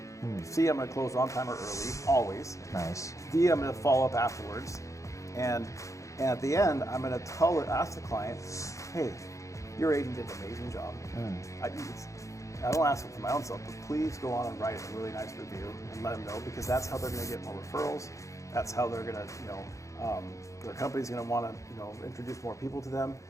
C, I'm going to close on time or early, always. Nice. D, I'm going to follow up afterwards. And at the end, I'm going to ask the client, hey, your agent did an amazing job. I don't ask it for my own self, but please go on and write a really nice review and let them know, because that's how they're going to get more referrals. That's how they're going to, their company's going to want to, introduce more people to them,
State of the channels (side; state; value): right; late; 0.15 ms